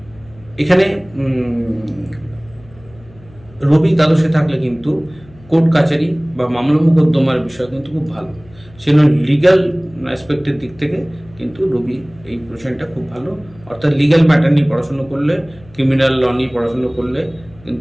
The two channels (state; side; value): noise; left; hum, 24 dB below the sound